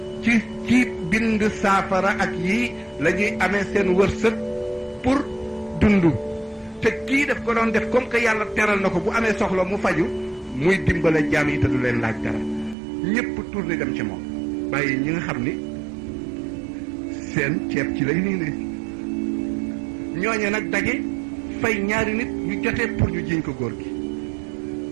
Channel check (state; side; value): drops out; left; at 12.8 s